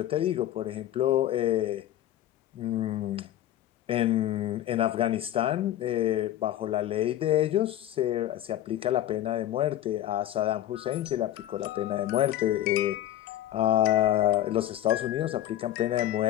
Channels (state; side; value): quieter; right; 12.8 dB